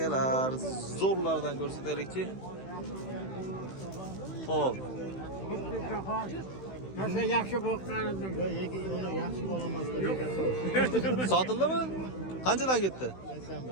zo'rlardan ko'rsataylikchi. Xo'p. Nasıl yaxshi boqqanimdan. Uni yaxshi bo'lamas. Sotildimi? Qanchadan ketdi?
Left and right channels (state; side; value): late; right; 16 ms